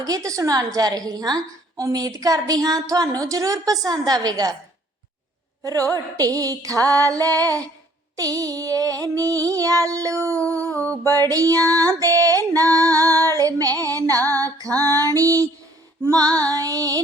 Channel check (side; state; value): both; normal; correlation 0.59